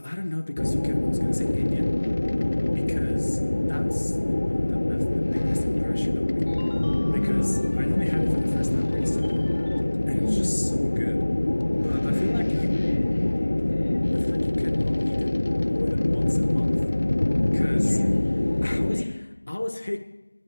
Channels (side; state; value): both; inverted; correlation -1.00